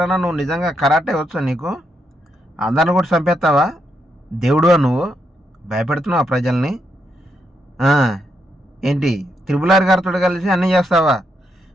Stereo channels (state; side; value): normal; both; correlation 0.80